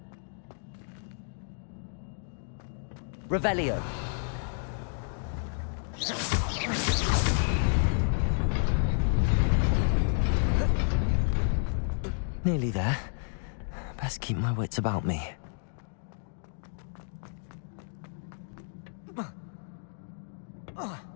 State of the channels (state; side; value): silent; right; digital silence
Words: Revelio. Nearly there. Best keep my wits about me.